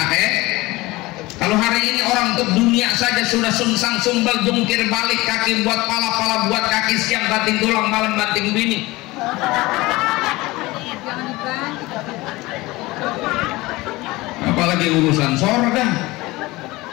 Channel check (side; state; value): right; quieter; 20.6 dB